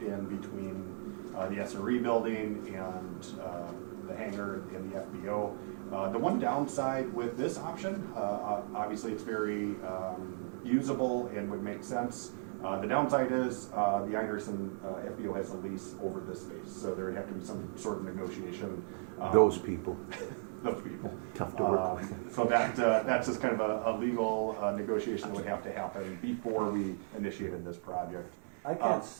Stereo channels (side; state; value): left; silent; digital silence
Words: in between the SRE building and the hangar and the FBO. The one downside with this option, obviously it's very usable and would make sense. The downside is the Einerson FBO has a lease over this space, so there would have to be some sort of negotiation. Those people. Those people. Tough to work with. So that's just kind of a legal negotiation that would have to happen before we initiated this project. I